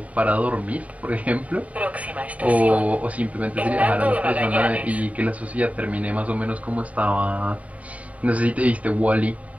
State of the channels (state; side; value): late; left; 0.068 ms